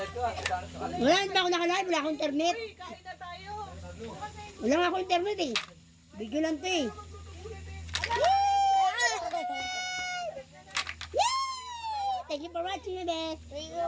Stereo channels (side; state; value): both; identical; correlation 1.00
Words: ka? Wala, hindi pa ako nakalive. Wala akong internet. Kain na tayo. Wala nga akong internet, eh. Video lang to, eh. Thank you for watching, bebe. Thank you